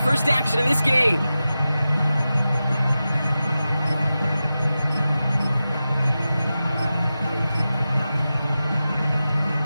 first action of this game.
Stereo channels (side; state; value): both; inverted; correlation -0.93